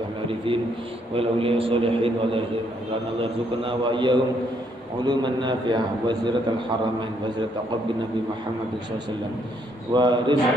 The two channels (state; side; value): normal; both; correlation 0.71